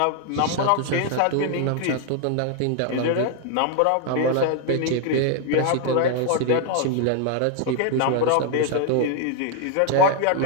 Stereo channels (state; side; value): different; both; correlation 0.00